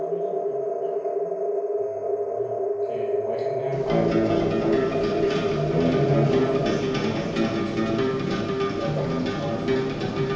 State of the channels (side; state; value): both; identical; correlation 1.00